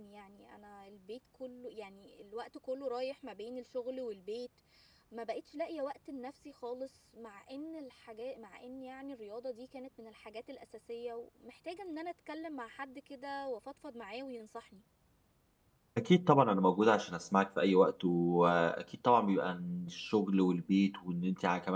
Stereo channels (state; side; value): identical; both; correlation 1.00